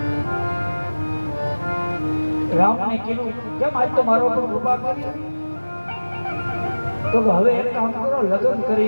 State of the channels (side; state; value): both; inverted; correlation -1.00